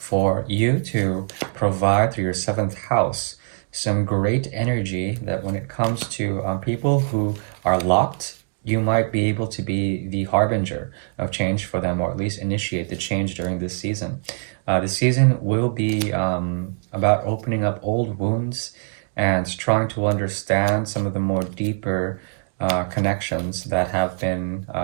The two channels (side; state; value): left; silent; digital silence